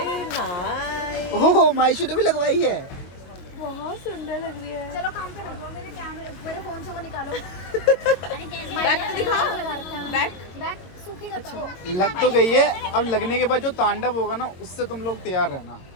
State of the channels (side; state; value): right; late; 22 ms